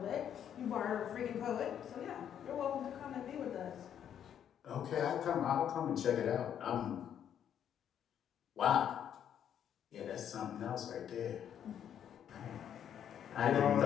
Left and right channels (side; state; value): right; quieter; 9.3 dB